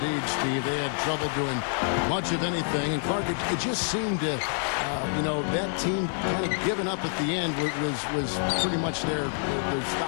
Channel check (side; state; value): right; silent; 60 dB below the other